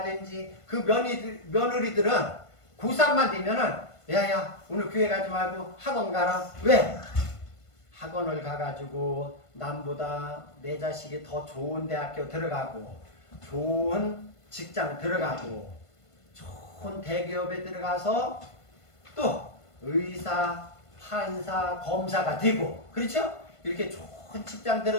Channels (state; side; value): late; right; 1.5 ms